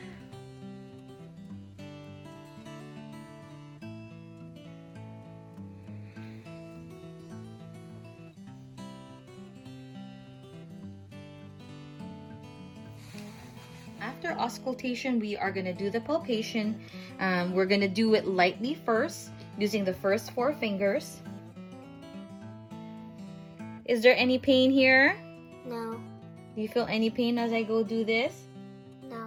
After auscultation, we are going to do the palpation. We're going to do it lightly first, using the first 4 fingers. Is there any pain here? No. Do you feel any pain as I go do this?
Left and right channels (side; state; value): both; identical; correlation 1.00